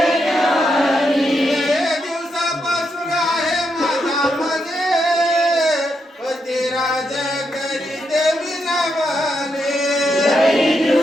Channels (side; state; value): both; normal; correlation 0.81